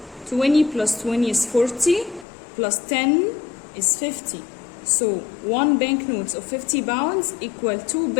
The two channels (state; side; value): drops out; right; at 2.2 s